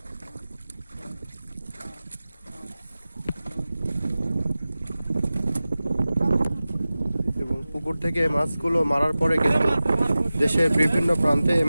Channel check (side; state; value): both; inverted; correlation -0.96